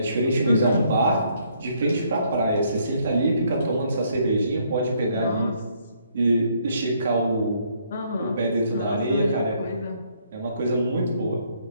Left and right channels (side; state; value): both; inverted; correlation -0.69